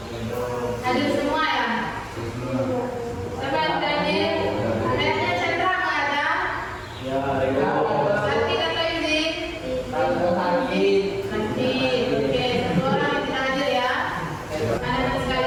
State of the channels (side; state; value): both; identical; correlation 1.00